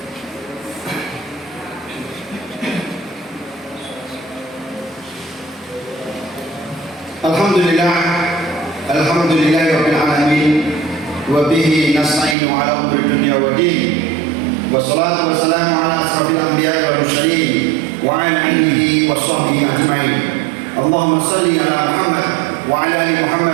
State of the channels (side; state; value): left; drops out; at 12.4 s